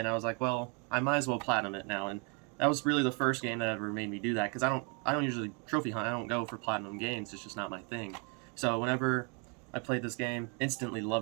I was like, well, I might as well platinum it now. And that was really the first game that ever made me do that, because I don't usually trophy hunt. I don't go for platinum games. It's just not my thing. So whenever I played this game, instantly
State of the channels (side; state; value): left; quieter; 35.4 dB